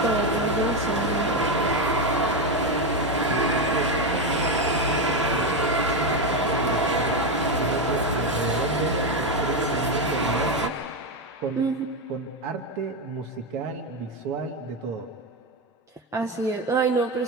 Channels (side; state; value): both; normal; correlation 0.11